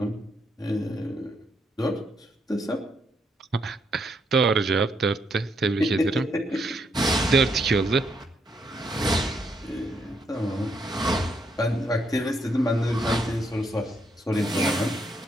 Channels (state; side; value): normal; both; correlation 0.76